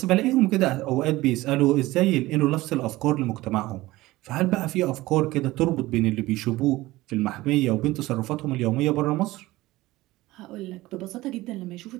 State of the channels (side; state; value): left; quieter; 18.4 dB